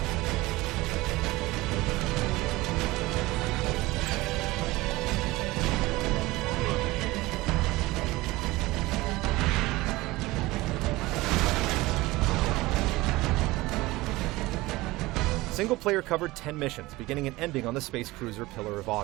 Single player covered 10 missions, beginning and ending on the space cruiser Pillar of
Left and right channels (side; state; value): left; quieter; 20.0 dB